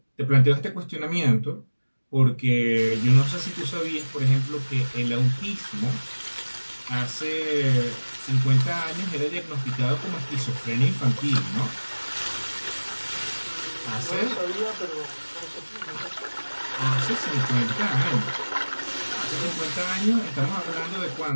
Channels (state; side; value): inverted; both; correlation -1.00